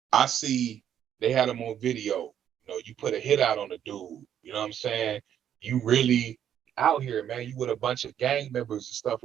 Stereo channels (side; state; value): left; quieter; 9.8 dB